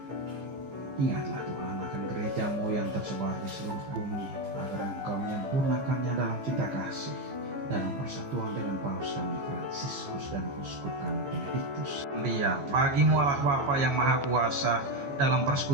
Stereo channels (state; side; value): late; left; 15 ms